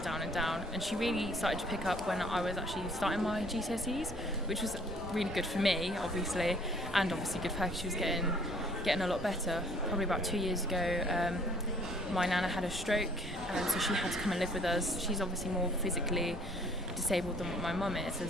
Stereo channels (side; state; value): both; normal; correlation 0.59